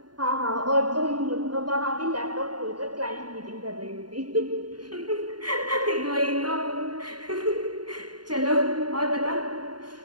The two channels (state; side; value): late; left; 0.70 ms